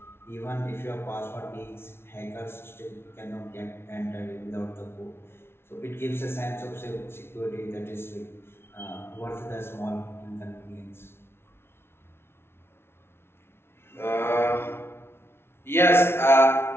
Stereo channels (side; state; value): right; late; 0.12 ms